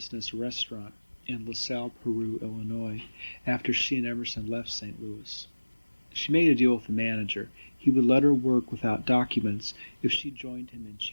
Restaurant in LaSalle, Peru, Illinois, after she and Emerson left St. Louis. She made a deal with the manager. He would let her work without documents if she joined him in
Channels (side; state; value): both; inverted; correlation -1.00